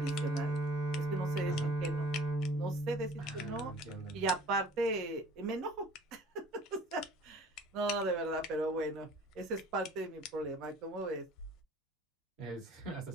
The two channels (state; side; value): normal; both; correlation 0.50